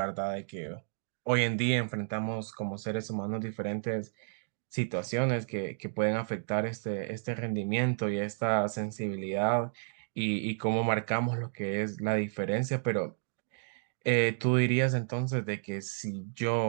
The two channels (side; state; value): left; silent; digital silence